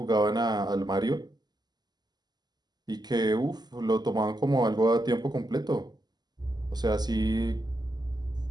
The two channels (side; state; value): left; late; 0.20 ms